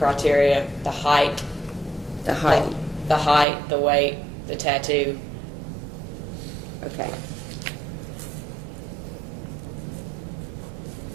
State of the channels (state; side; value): drops out; left; at 3.5 s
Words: the height, the height. the weight, the tattoo. Okay.